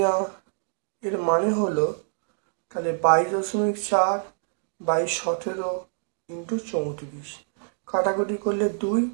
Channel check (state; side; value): silent; left; digital silence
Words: এর মানে হলো তাহলে 22.4/17 ইন্টু 34, কাটাকুটি করলে 2,